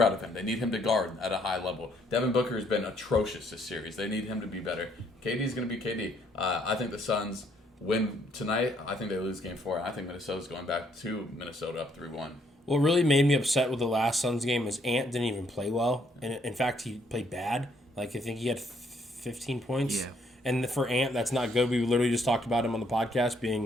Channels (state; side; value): normal; both; correlation 0.69